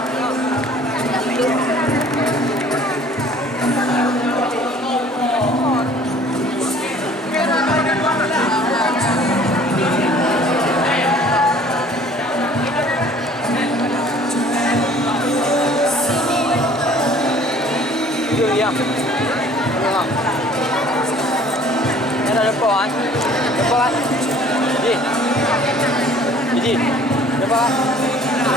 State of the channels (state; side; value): normal; both; correlation 0.52